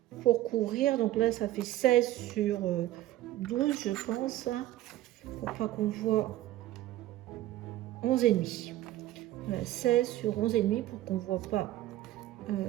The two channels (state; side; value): quieter; left; 14.7 dB